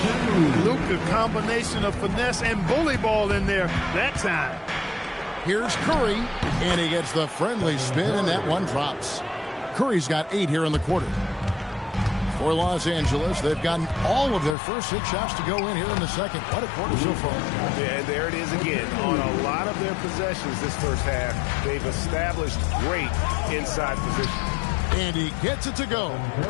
Luka, combination of finesse and bully ball in there that time. Here's Curry, and he gets the friendly spin, and that one drops. Curry's got 8 here in the quarter. For Los Angeles, they've gotten all of their first 6 shots to go in here in the second. What a quarter so far. Yeah, there it is again. On a lot of their possessions this first half, they've established great inside position. And he gets it to go.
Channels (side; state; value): right; drops out; at 14.6 s